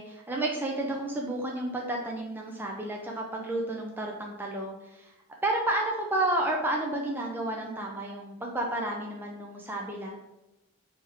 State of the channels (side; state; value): both; normal; correlation 0.24